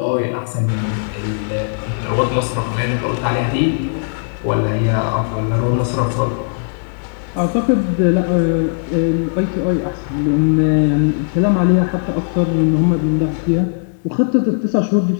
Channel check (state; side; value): silent; right; digital silence